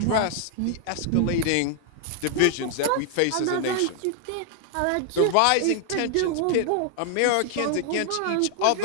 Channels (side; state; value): both; different; correlation 0.00